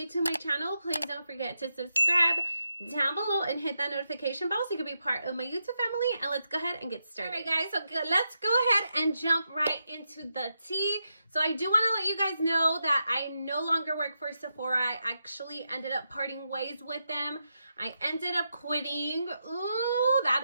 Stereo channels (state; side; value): inverted; both; correlation -0.85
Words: to my channel, please don't forget to subscribe down below and hit that notification bell so you can be part of my YouTube family. And let's go ahead and get started. All right, guys, so let's go ahead and jump right into the tea. So I do want to let you guys know that I no longer work for Sephora. I actually ended up parting ways with them. I ended up quitting. Ooh,